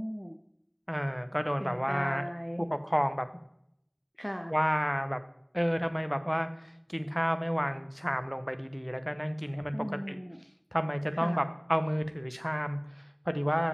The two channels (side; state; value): both; identical; correlation 1.00